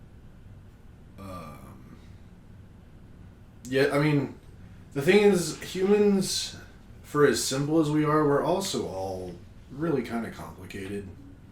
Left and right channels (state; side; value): identical; both; correlation 1.00